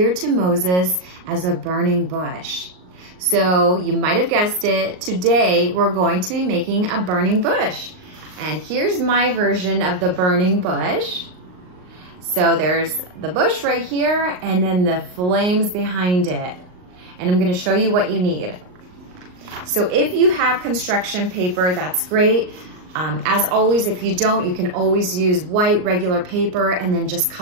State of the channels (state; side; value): late; left; 39 ms